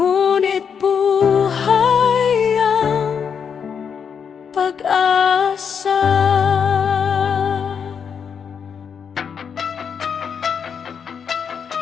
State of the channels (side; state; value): right; quieter; 7.0 dB